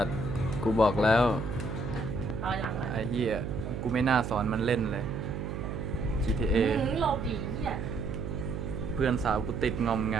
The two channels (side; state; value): right; noise; hum, 5 dB below the sound